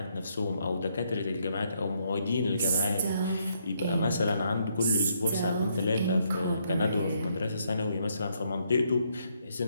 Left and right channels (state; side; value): inverted; both; correlation -0.74